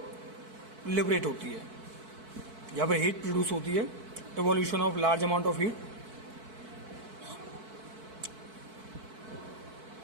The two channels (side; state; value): left; late; 4.6 ms